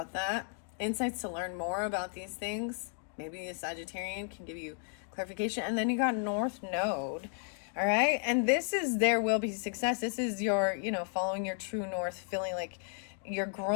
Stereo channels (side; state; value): right; silent; 55 dB below the other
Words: that. Insights to learn more about these things. Maybe a Sagittarian can give you clarification. And then you got North Node. All right. And this is, there will be success. This is your, you know, following your true north, feeling like you're